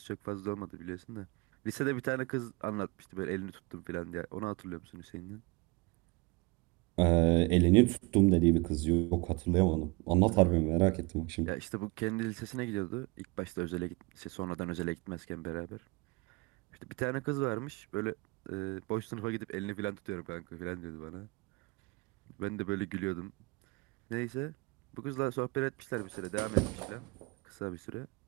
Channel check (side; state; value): left; quieter; 25.7 dB